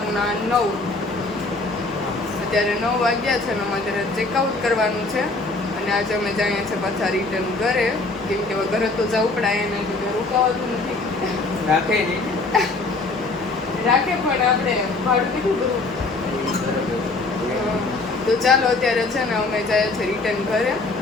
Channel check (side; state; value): right; quieter; 3.4 dB